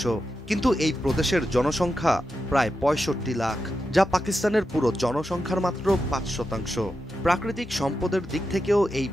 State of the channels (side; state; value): both; normal; correlation 0.89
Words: কিন্তু এই প্রদেশের জনসংখ্যা প্রায় 65 লাখ, যা পাকিস্তানের পুরো জনসংখ্যার মাত্র 5%। প্রাকৃতিক সম্পদের দিক থেকেও এই